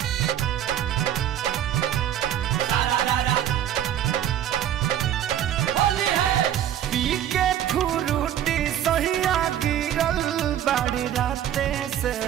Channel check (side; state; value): left; quieter; 10.9 dB